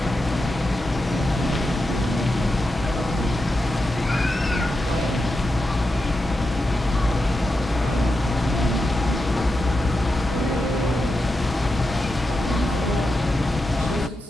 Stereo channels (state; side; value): normal; both; correlation 0.88